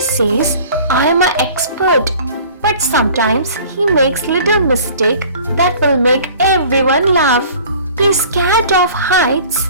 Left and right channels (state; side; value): inverted; both; correlation -0.47